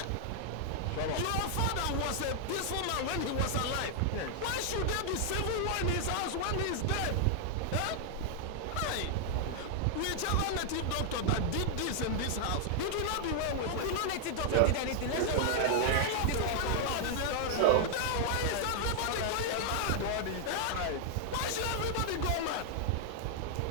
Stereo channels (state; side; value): different; both; correlation 0.00